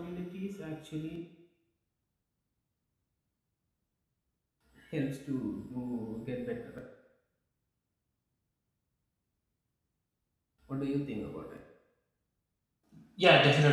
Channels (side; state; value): both; identical; correlation 1.00